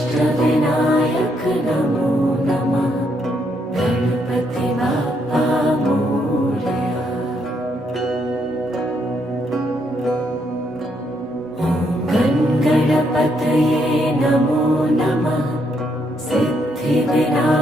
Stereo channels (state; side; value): normal; both; correlation 0.75